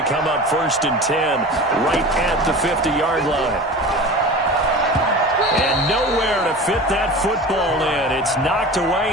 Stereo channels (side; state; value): both; normal; correlation 0.34